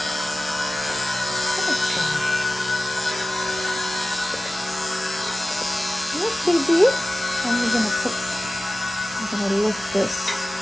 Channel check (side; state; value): both; normal; correlation 0.95